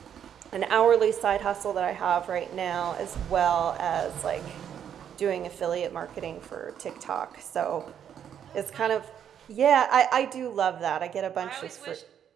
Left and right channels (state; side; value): quieter; left; 9.0 dB